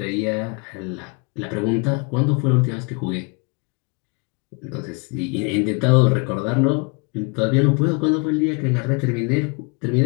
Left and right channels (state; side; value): quieter; right; 31.4 dB